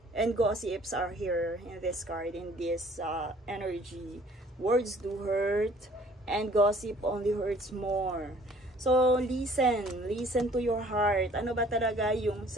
and gossips are here in this card, in this energy. Words do hurt, and gossip only hurts more. So, listen to your heart. Ano ba talaga yung,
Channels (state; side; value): normal; both; correlation 0.55